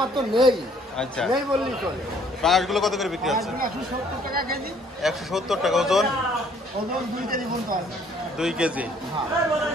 তো নেই। আচ্ছা, নেই বললেই চলে। পাঙাশগুলো কত করে বিক্রি হচ্ছে? 170 টাকা কেজি। 170 টাকা ওজন? ওজন 2 কেজি পর্যন্ত আছে। 2 কেজি। হ্যাঁ।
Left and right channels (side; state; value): both; normal; correlation 0.61